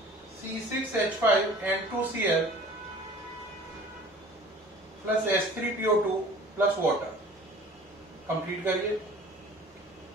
C6H5N2Cl plus H3PO2 plus water, complete करिए।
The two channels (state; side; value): normal; both; correlation 0.46